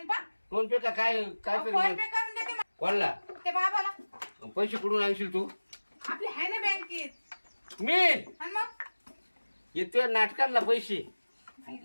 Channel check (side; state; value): both; inverted; correlation -1.00